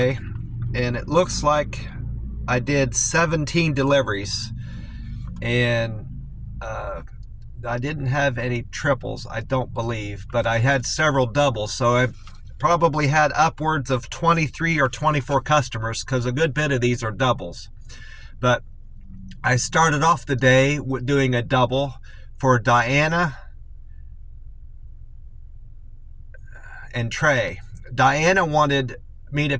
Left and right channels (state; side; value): identical; both; correlation 1.00